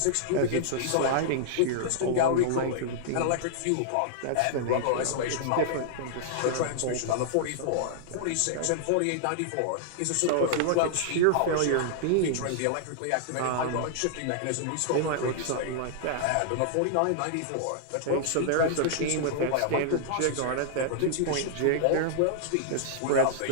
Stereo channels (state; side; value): different; both; correlation -0.01